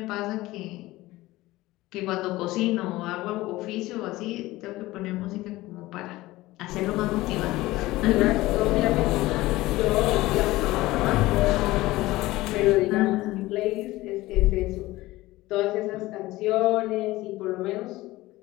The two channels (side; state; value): right; quieter; 18.4 dB